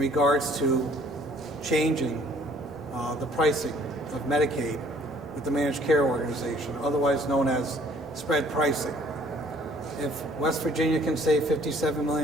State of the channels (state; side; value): normal; both; correlation 0.58